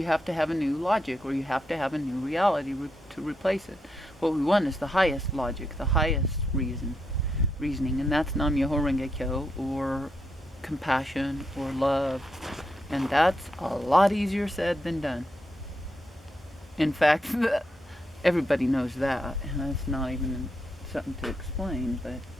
have to have a new logic, or you have to have a new reality to replace it. What we want is the highest logic, the highest reasoning, and that's Nam Myoho Renge Kyo, or compassion, or love. And that's a lot easier said than done. In fact, everybody knows that, and that's not even something to explain. But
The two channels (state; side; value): normal; both; correlation 0.81